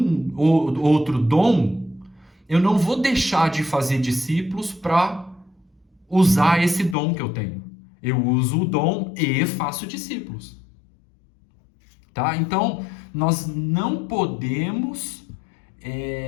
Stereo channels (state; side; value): drops out; right; at 7.0 s